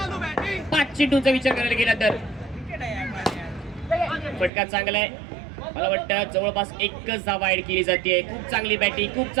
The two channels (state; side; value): drops out; left; at 4.5 s